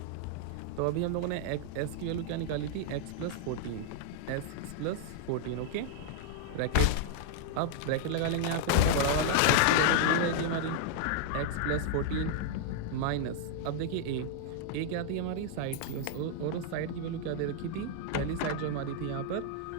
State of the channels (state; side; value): different; both; correlation 0.00